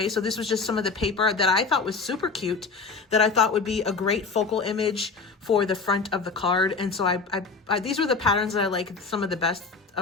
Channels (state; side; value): quieter; right; 4.5 dB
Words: so this was just some of the paper that I thought was super cute, that I thought would be a great focal image for the front of the card. And so I these were the patterns that I like some of the best